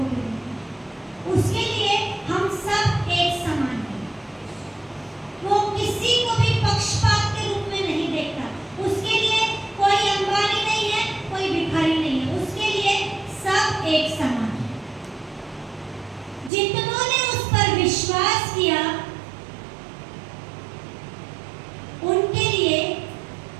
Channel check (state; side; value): drops out; left; at 16.5 s